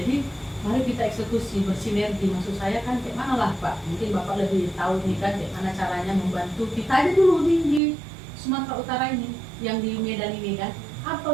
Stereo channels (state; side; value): drops out; left; at 7.8 s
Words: mari kita eksekusi, bersinergi. Maksud saya kan kayak mana lah Pak, mungkin Bapak lebih tahu nih kan kayak mana caranya membantu kita aja dulu di Sumatera Utara ini, yang di Medan ini kan.